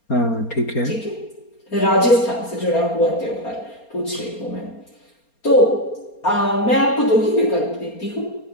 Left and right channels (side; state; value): right; late; 4.3 ms